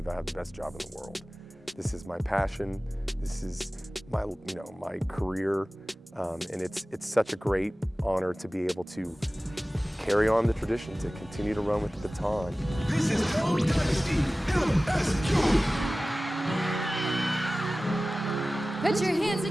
I have the best job in the world. This is my passion. This is my, you know, my career, and it's such a great honor to be able to carry on the tradition, to continue to run with the baton. This is Code Dynasty LSU. Put your hands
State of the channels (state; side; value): normal; both; correlation 0.97